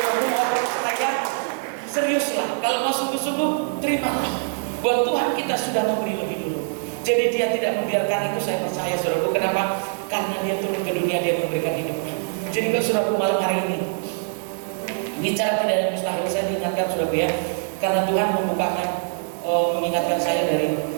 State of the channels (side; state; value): left; silent; digital silence